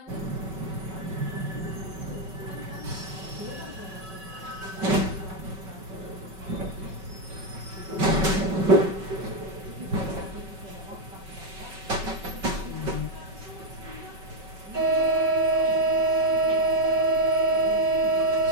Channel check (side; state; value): left; late; 5.3 ms